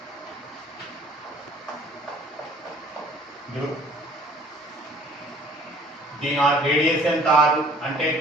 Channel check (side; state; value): both; normal; correlation 0.53